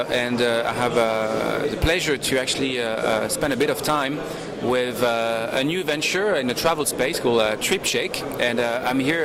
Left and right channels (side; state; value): both; identical; correlation 1.00